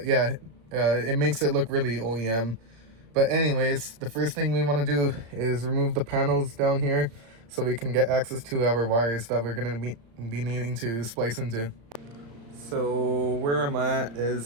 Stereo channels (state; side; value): late; left; 35 ms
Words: yeah, it makes it look really OEM. But anyways, the first thing we want to do is remove the panels down here so we can get access to our wires that we're going to be needing to splice into. So where I'm at